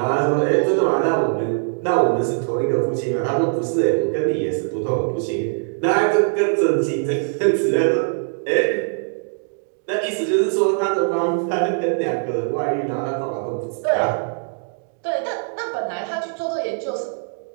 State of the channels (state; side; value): silent; left; digital silence